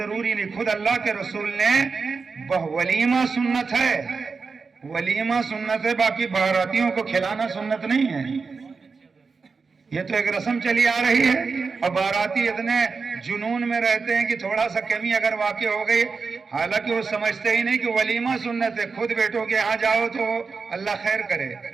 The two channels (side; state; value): left; quieter; 4.8 dB